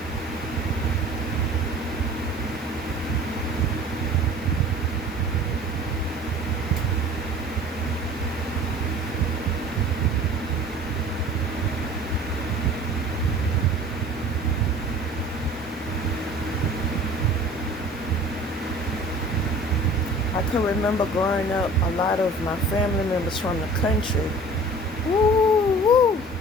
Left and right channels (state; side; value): normal; both; correlation 0.45